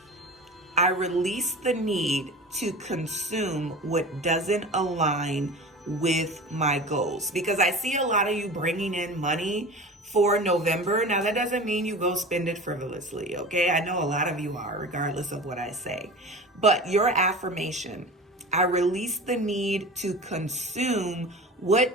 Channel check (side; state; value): both; normal; correlation 0.34